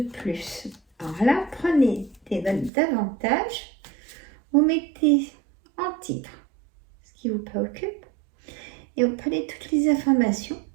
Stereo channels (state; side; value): drops out; left; at 2.7 s